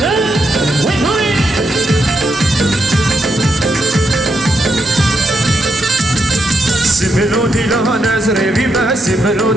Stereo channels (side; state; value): both; normal; correlation 0.81